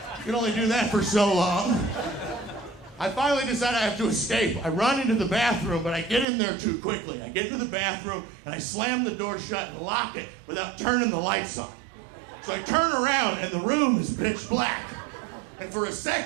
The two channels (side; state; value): left; drops out; at 6.2 s